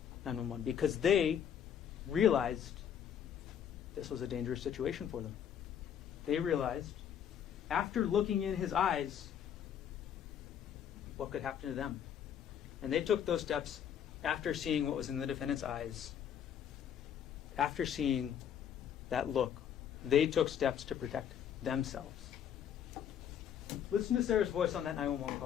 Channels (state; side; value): quieter; right; 8.9 dB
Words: because they realized this was a dangerous situation for them. They realized, after looking in his eyes, what could happen to them. And they took those steps after seeing what was in the defendant's eyes. After seeing that look, they took steps to protect themselves. Listen to Sarah's voice on that 911